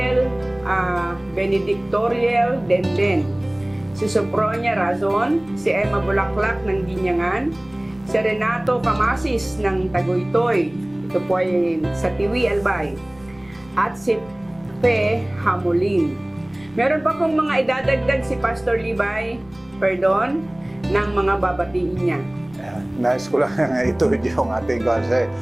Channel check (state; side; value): noise; left; rumble, 26 dB below the sound